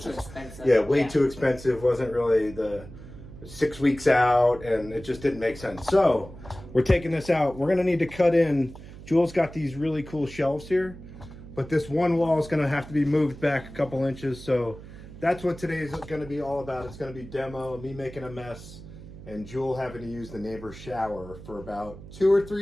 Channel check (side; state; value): right; noise; hum, 15 dB below the sound